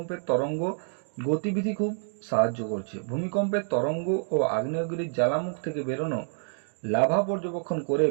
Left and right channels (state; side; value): silent; left; digital silence